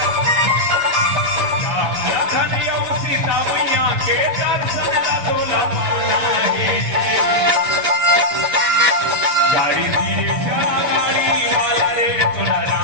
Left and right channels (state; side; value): late; left; 6.7 ms